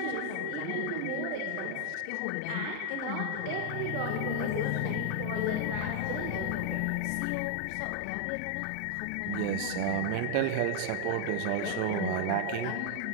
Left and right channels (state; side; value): different; both; correlation 0.00